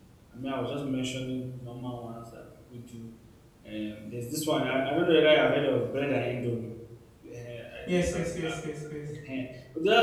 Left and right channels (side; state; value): both; identical; correlation 1.00